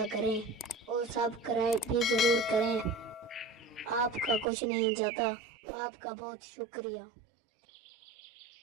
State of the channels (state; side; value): drops out; left; at 4.5 s